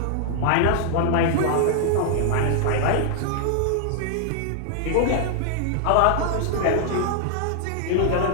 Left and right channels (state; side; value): different; both; correlation -0.01